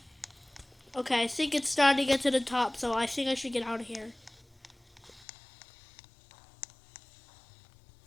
Okay, I think it's starting to get to the top, so I think I should get out of here.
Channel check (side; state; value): right; drops out; at 5.2 s